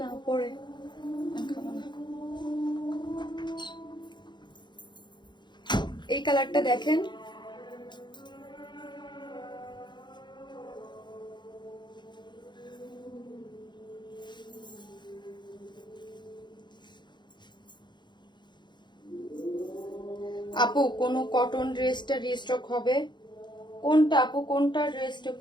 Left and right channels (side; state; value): right; late; 0.22 ms